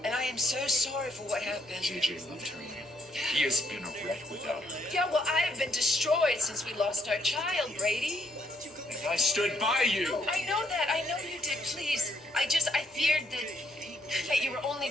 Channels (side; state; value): both; normal; correlation 0.72